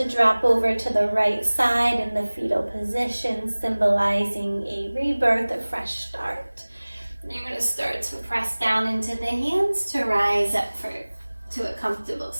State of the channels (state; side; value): inverted; both; correlation -1.00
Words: drop over to the right side in the fetal position, symbolizing a rebirth, a fresh start. And you're going to start to press down into the hands to rise up to a comfortable